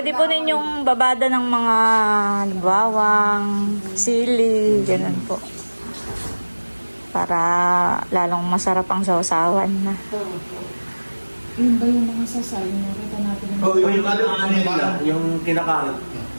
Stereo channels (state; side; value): inverted; both; correlation -1.00